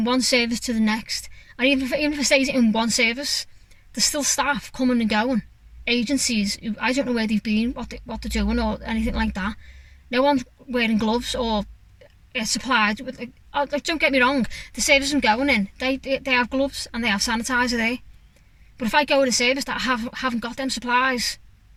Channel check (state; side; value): identical; both; correlation 1.00